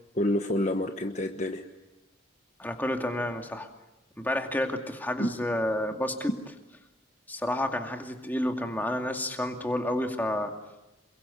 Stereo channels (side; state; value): both; normal; correlation 0.70